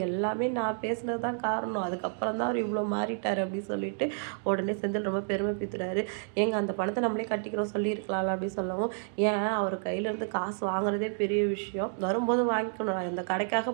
எல்லாமே நான் பேசுனது தான் காரணம், அதுக்கப்புறம் தான் அவர் இவ்வளோ மாறிட்டார் அப்படின்னு சொல்லிட்டு உடனே செந்தில் ரொம்ப பெருமை பீத்துறாரு. ஏங்க அந்த பணத்தை நம்மளே கட்டிக்கிறோம் சொல்லியிருக்கலாம்ல அப்படின்னு சொல்லவும், ஏன் அவர் கையிலேருந்து காசு வாங்குறதே பெரிய விஷயம், வரும்போது வாங்கிக்கணும், நான் இந்த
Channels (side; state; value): left; silent; digital silence